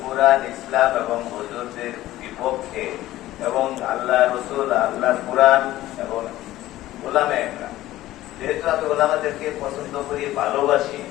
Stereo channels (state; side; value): quieter; right; 15.4 dB